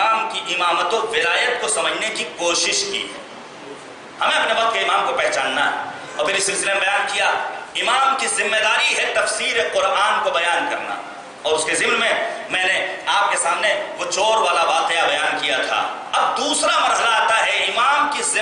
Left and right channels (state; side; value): identical; both; correlation 1.00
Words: کی امامت و ولایت کو سمجھنے کی کوشش کی ہے۔ ہمیں اپنے وقت کے امام کو پہچاننا ہے، اور پھر اس سلسلے میں بیان کیا امام کی ذمہ داری ہے تفسیر قرآن کو بیان کرنا، اور اس کے ضمن میں نے آپ کے سامنے وہ چور والا واقعہ بیان کیا تھا۔ اب دوسرا مرحلہ آتا ہے، امام کی